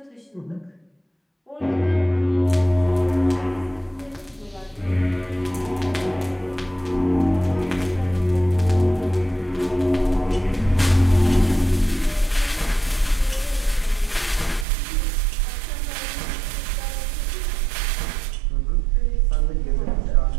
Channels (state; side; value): drops out; left; at 14.7 s